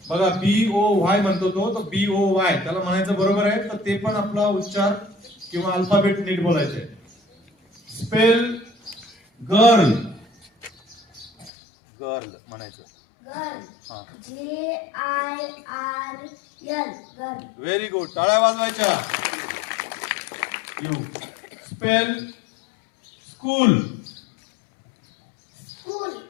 बघा BOY म्हणतो तो, तर BOY त्याला म्हणायचं बरोबर आहे. तर ते पण आपला उच्चार किंवा अल्फाबेट नीट बोलायचे. Spell girl. गर्ल म्हणायचं. गर्ल. हा, GIRL. गर्ल. Very good. टाळ्या वाजवायच्या. You. Spell school. School.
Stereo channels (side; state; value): right; drops out; at 11.5 s